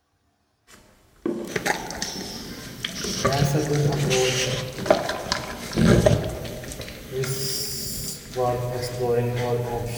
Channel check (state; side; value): identical; both; correlation 1.00